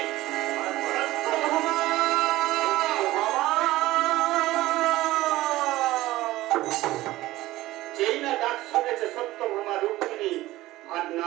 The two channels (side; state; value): left; quieter; 17.0 dB